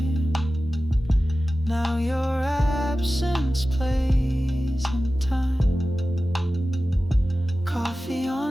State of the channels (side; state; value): both; normal; correlation 0.95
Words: Now your absence plays in time. Coffee